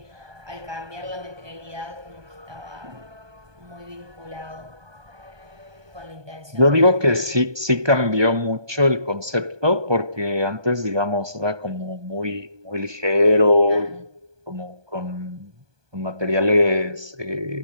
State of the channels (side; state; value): left; late; 1.2 ms